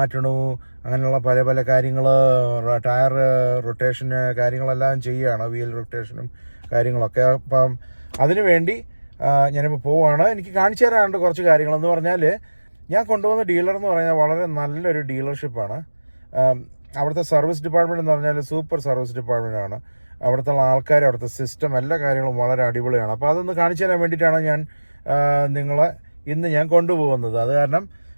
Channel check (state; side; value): inverted; both; correlation -1.00